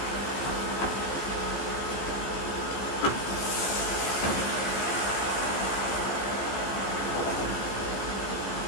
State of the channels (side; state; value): right; late; 15 ms